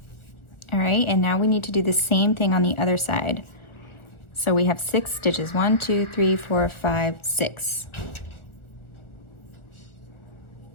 All right, and now we need to do the same thing on the other side. So we have 6 stitches, 1, 2, 3, 4, 5, 6.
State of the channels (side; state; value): right; late; 1.5 ms